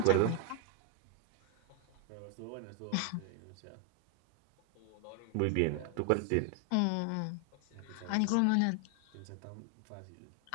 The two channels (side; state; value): both; different; correlation 0.00